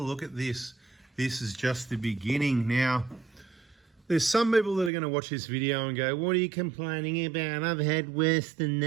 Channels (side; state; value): left; drops out; at 4.9 s